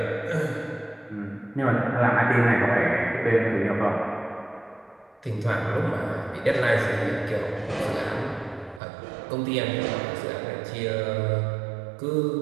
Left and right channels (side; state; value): left; drops out; at 8.8 s